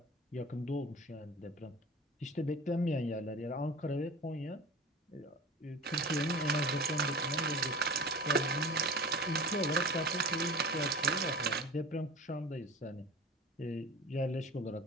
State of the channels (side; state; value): both; normal; correlation 0.37